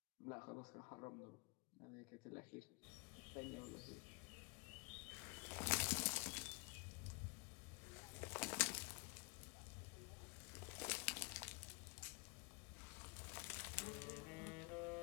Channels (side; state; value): right; quieter; 28.0 dB